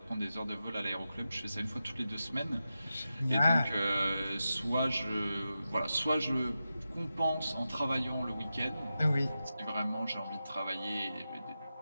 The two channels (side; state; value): both; inverted; correlation -0.91